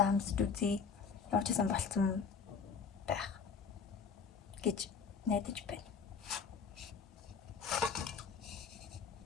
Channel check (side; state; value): right; quieter; 6.0 dB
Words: амсч үзье. Ямар ч юм болцсон байх гэж найдаж байна.